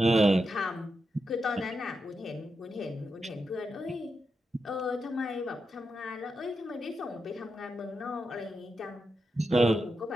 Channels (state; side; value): normal; both; correlation 0.87